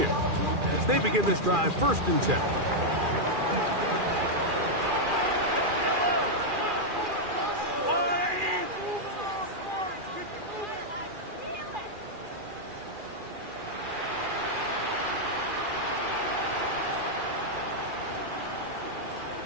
as they begin this drive 1st and 10.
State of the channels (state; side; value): late; left; 2.4 ms